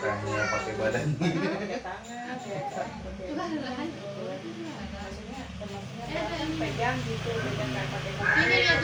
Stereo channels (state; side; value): identical; both; correlation 1.00